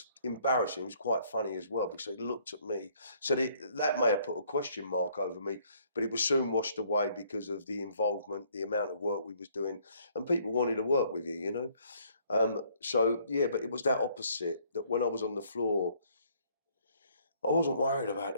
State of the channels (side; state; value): both; inverted; correlation -0.63